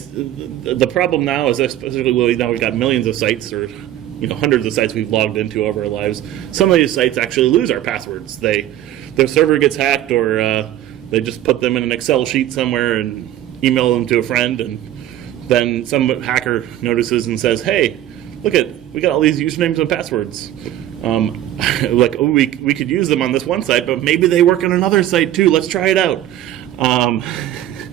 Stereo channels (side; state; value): left; quieter; 12.8 dB